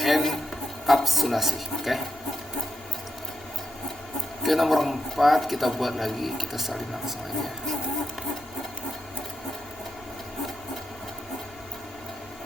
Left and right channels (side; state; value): both; normal; correlation 0.85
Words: enkapsulasi. Oke, nomor 4 kita buat lagi, kita salin langsung aja.